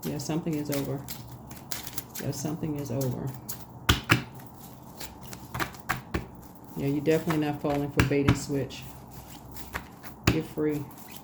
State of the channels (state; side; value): identical; both; correlation 1.00